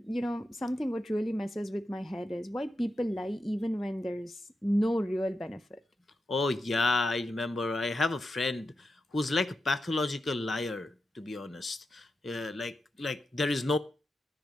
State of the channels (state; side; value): normal; both; correlation 0.88